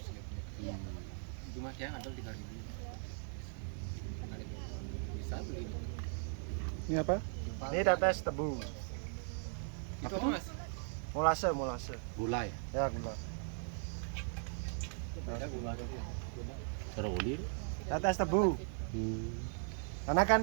Cuma yang ada 3.000. Bisa beli. Ini apa? Ini tetes tebu, Itu apa Mas? molase. Gula ya. Ya, gula. Ada gula. Serolir. Tetes tebu. Karena kan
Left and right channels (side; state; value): left; silent; 52 dB below the other